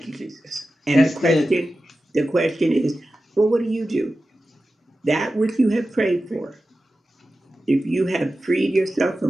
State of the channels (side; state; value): both; normal; correlation 0.93